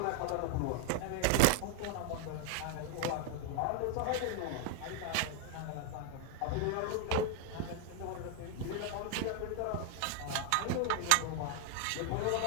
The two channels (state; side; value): different; both; correlation 0.00